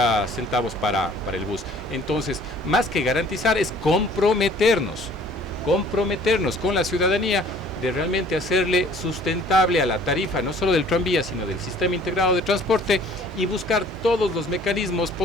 centavos para el bus. Entonces, más que garantizar, es comprometernos con la ciudadanía de realmente hacerle sustentable a la tarifa, no solo del tranvía, sino del sistema integrado de transporte, y buscar todos los mecanismos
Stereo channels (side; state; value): both; normal; correlation 0.54